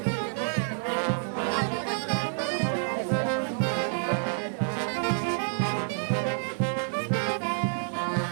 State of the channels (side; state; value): left; silent; digital silence